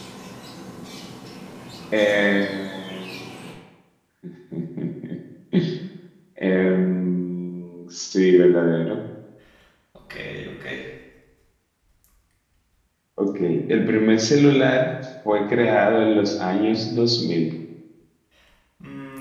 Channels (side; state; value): both; identical; correlation 1.00